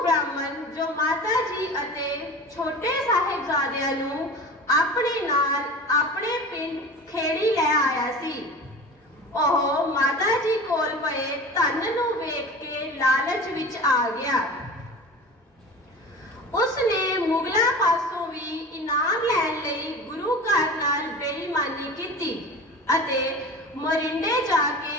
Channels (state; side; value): normal; both; correlation 0.34